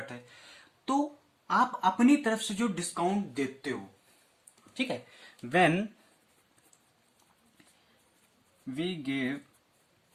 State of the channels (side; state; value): both; identical; correlation 1.00